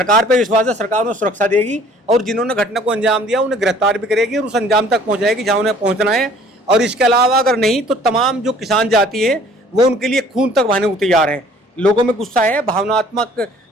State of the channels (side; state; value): both; normal; correlation 0.54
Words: पे विश्वास है, सरकार उन्हें सुरक्षा देगी, और जिन्होंने घटना को अंजाम दिया उन्हें गिरफ्तार भी करेगी और उस अंजाम तक पहुँचाएगी जहाँ उन्हें पहुँचना है। और इसके अलावा अगर नहीं तो तमाम जो किसान जाति है वो उनके लिए खून तक बहाने को तैयार हैं। लोगों में गुस्सा है, भावनात्मक,